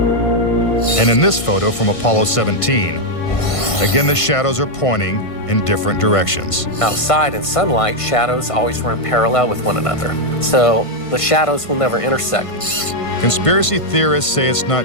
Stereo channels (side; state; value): right; late; 1.5 ms